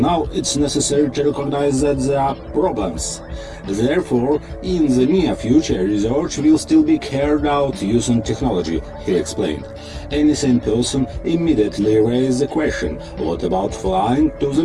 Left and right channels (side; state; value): both; identical; correlation 1.00